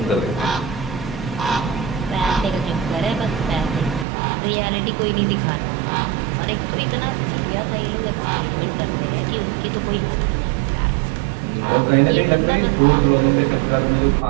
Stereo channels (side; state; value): left; drops out; at 4.0 s